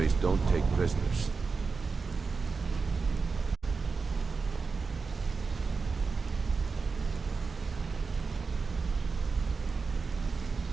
don't take prisoners.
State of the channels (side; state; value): left; quieter; 4.6 dB